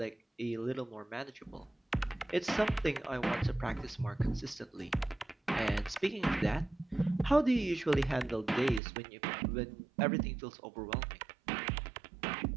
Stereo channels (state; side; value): drops out; left; at 8.8 s